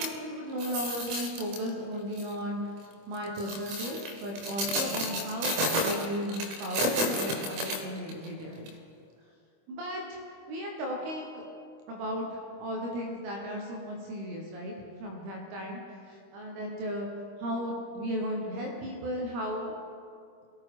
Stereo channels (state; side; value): late; left; 25 ms